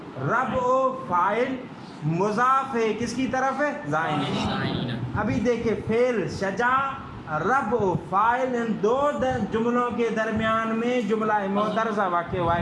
ربع فاعل، مضاف ہے کس کی طرف ہے؟ زائنین۔ ابھی دیکھیں فعل شجا، ربع فاعل، ان دو جملوں کے درمیان میں جملہ معترضہ واقع ہوا ہے،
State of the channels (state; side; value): identical; both; correlation 1.00